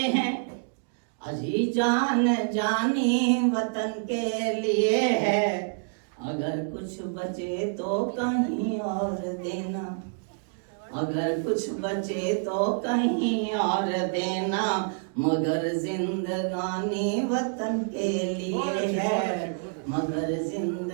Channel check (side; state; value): left; silent; 60 dB below the other